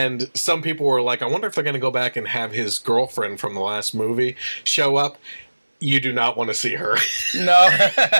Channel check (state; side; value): inverted; both; correlation -1.00